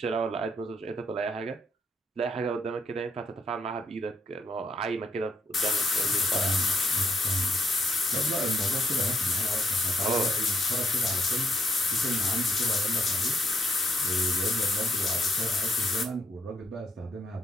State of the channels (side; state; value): both; normal; correlation 0.73